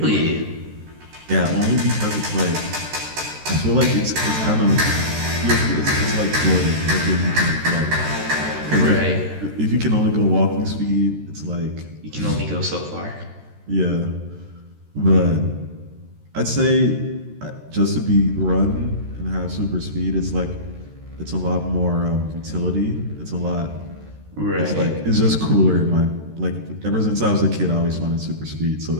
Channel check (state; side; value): late; left; 13 ms